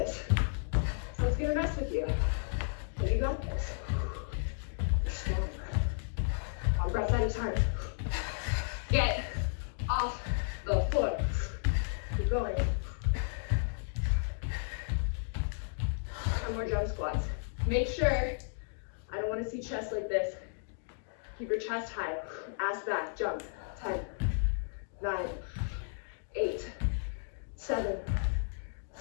So it's gonna mess with you. But you got this. You're strong. One breath at a time. Get off the floor. Keep going. 10 more jump squats. Make sure, I don't want to see chest like this. Keep your chest high. Ass back, jump. 10, 9, 8, 7,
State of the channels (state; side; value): silent; right; digital silence